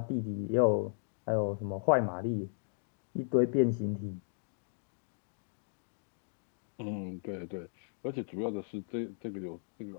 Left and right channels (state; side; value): silent; right; digital silence